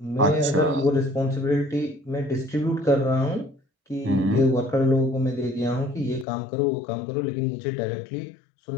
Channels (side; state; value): right; drops out; at 6.2 s